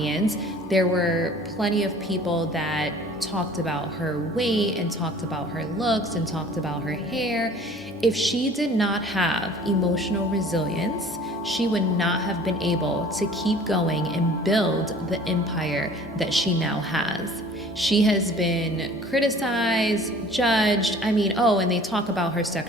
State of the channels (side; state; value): both; normal; correlation 0.49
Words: There were plenty of people that talked about her weight and talked about her looks and talked about her hair. If she did not have emotional resilience, she would not have been able to keep going and build the empire that she now has. She has been criticized, judged. I mean, and they talk about her